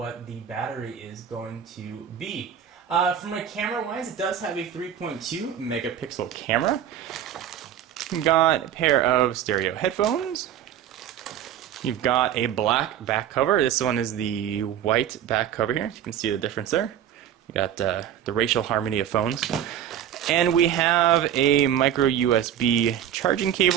the battery is going to be. From a camera-wise, it does have a 3.2 megapixel camera. You've got a pair of stereo headphones. You've got a black back cover. This one is the white back cover here. You can see the difference there. You got the racial harmony of phones. And we have a micro USB charging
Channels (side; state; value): left; quieter; 10.1 dB